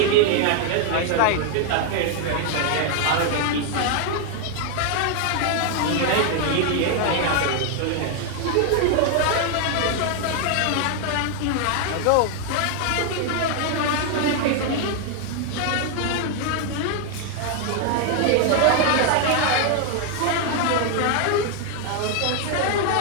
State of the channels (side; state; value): both; different; correlation 0.00